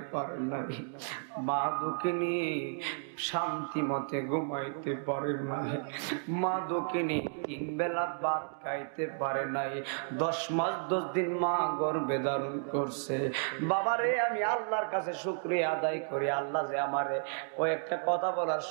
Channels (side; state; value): left; silent; digital silence